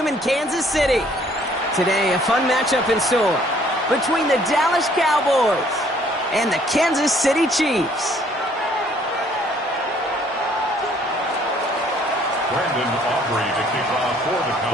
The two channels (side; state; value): both; normal; correlation 0.61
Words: in Kansas City. Today, a fun matchup in store between the Dallas Cowboys and the Kansas City Chiefs. Brandon Aubrey to kick off for the Cowboys.